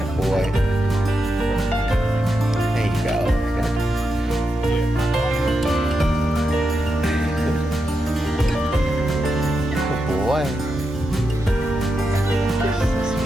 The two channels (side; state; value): both; normal; correlation 0.86